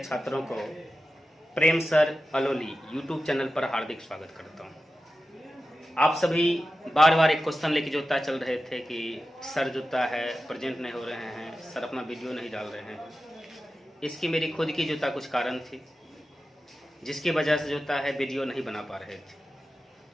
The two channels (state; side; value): normal; both; correlation 0.93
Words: को प्रेम सर अलोली यूट्यूब चैनल पर हार्दिक स्वागत करता हूं। आप सभी बार बार एक क्वेश्चन लेके जोता चल रहे थे कि सर जोता है प्रेजेंट नहीं हो रहे हैं, सर अपना वीडियो नहीं डाल रहे हैं। इसकी मेरी खुद की जोता कुछ कारण थी जिसकी वजह से जोता है वीडियो नहीं बना पा रहे थे।